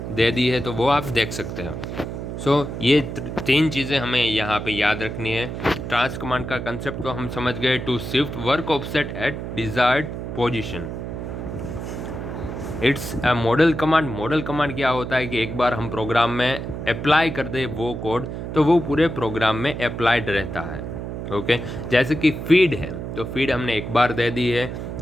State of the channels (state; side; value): noise; right; hum, 6 dB below the sound